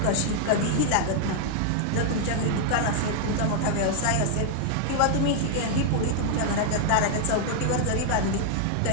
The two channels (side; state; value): both; different; correlation 0.00